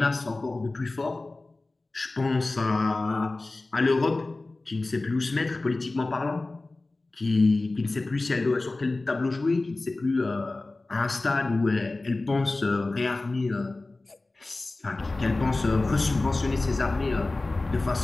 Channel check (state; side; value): quieter; right; 3.1 dB